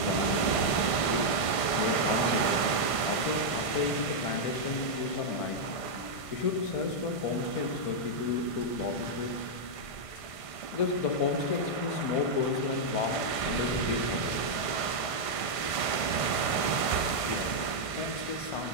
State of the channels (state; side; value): late; right; 1.5 ms